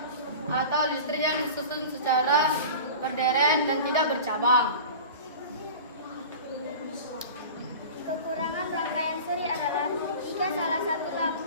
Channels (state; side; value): inverted; both; correlation -0.35